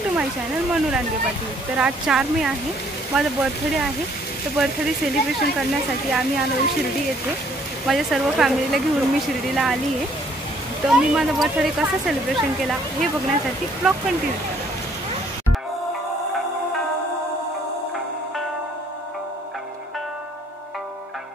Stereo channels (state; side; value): normal; both; correlation 0.63